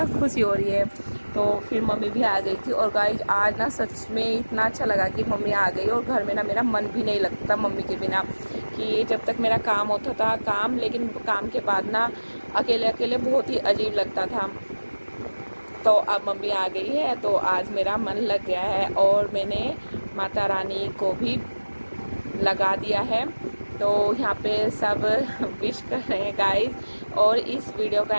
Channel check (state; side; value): inverted; both; correlation -1.00